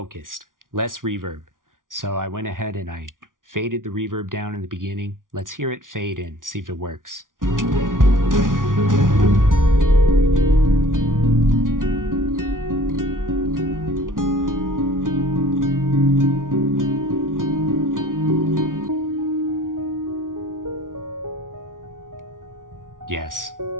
less reverb. So I went ahead and I faded the reverb down in the beginning. Let's hear it fade in, see if it works. Yes,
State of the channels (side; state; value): left; late; 0.89 ms